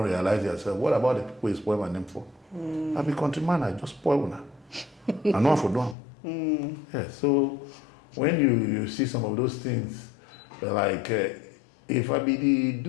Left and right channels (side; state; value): right; drops out; at 6.0 s